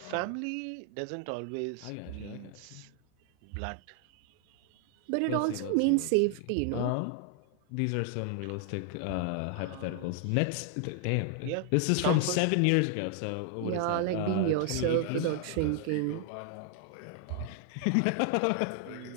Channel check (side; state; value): both; different; correlation 0.00